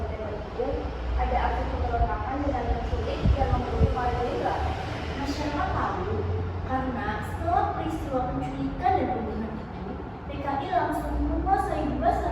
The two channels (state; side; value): identical; both; correlation 1.00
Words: itu ada aksi pemberontakan dengan penculik dan membunuh para jenderal. Masyarakat tahu karena setelah peristiwa penculikan dan pembunuhan itu, PKI langsung menguasai dua